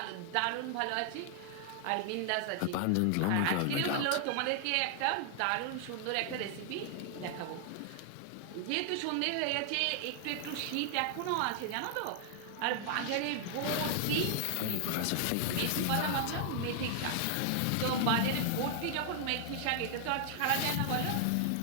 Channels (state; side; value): different; both; correlation 0.00